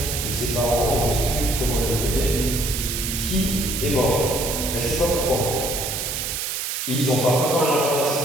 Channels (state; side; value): noise; right; hiss, 3 dB below the sound